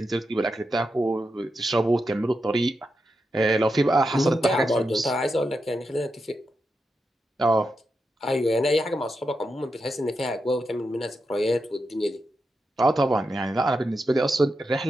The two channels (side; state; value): both; normal; correlation 0.87